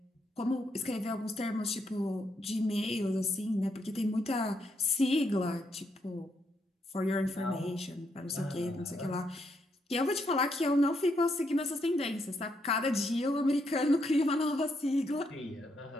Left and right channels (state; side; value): normal; both; correlation 0.78